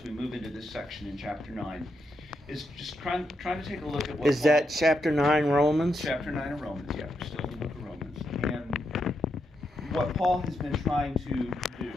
we move into this section in chapter 9 is just trying to take a look at what Is Paul, that chapter 9 Romans? Chapter 9 of Romans, yeah. We're still in the book of Romans. And what Paul has been trying to do.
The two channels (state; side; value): normal; both; correlation 0.82